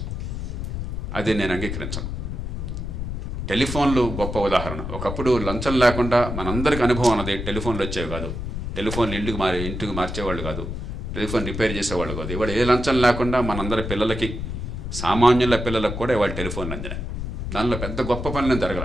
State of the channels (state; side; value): noise; left; rumble, 5 dB below the sound